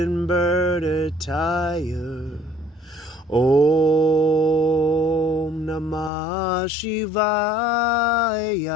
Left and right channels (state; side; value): drops out; right; at 6.1 s